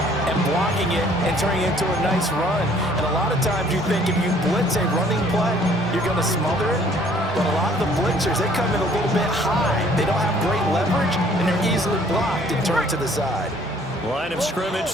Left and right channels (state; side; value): normal; both; correlation 0.58